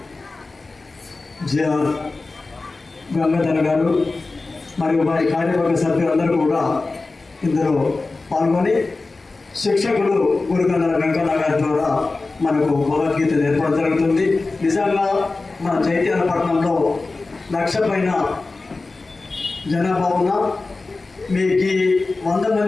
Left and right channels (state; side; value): quieter; right; 3.6 dB